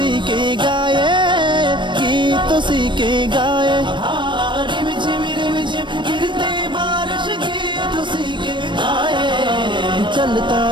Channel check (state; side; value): late; left; 0.23 ms